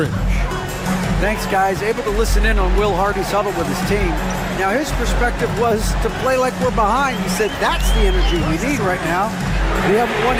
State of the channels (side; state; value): both; identical; correlation 1.00